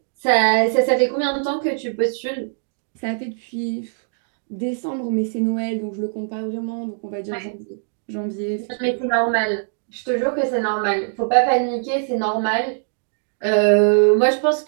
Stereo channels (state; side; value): silent; left; digital silence